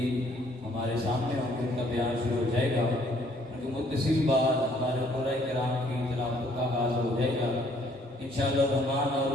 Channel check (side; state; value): both; normal; correlation 0.63